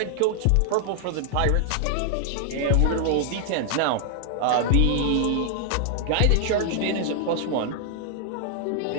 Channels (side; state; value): both; different; correlation -0.01